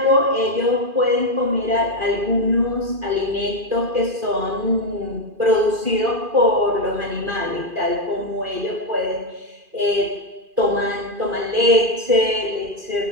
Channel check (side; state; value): left; late; 2.4 ms